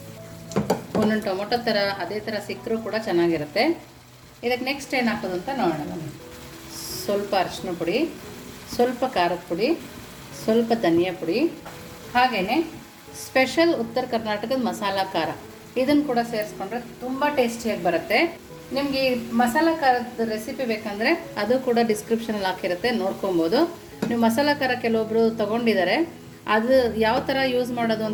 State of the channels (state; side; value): identical; both; correlation 1.00